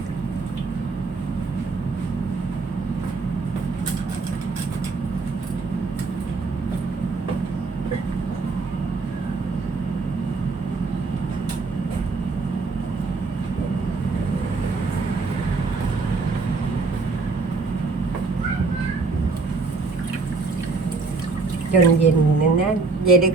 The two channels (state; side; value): quieter; left; 4.0 dB